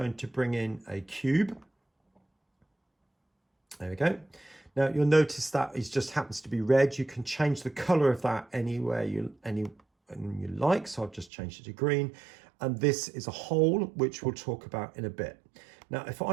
to bring in a cube. There we go. Now, you'll notice that it just happens to be red. You can change the color of that anywhere you like. So I've just changed it to green. And this is a hole, which we'll talk about in a bit. Now, if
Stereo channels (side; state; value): left; drops out; at 11.3 s